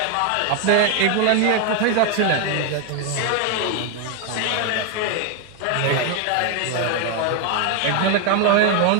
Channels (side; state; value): both; different; correlation 0.01